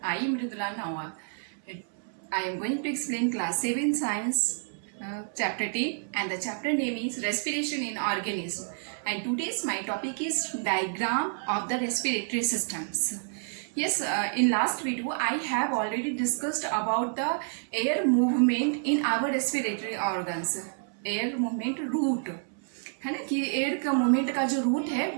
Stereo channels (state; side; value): silent; left; 59 dB below the other